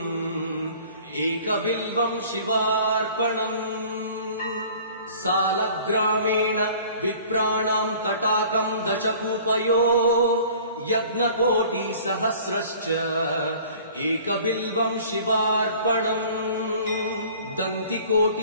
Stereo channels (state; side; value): inverted; both; correlation -0.48